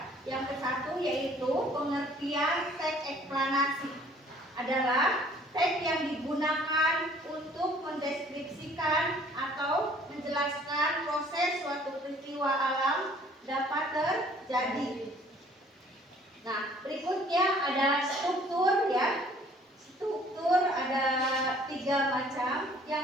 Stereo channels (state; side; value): normal; both; correlation 0.56